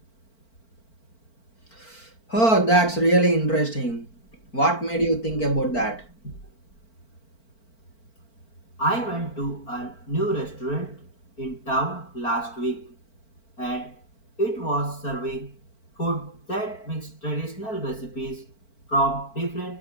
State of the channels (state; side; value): late; right; 4.5 ms